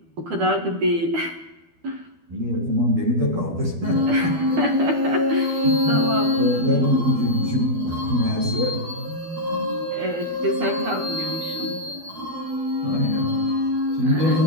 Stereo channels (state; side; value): late; left; 12 ms